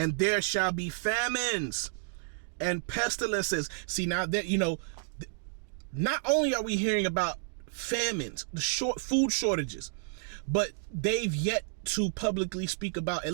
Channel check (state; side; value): silent; left; digital silence